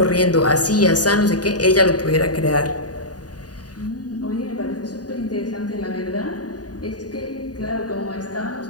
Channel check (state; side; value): late; right; 0.68 ms